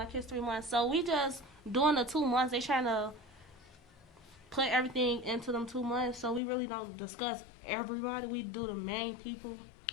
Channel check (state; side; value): drops out; right; at 6.4 s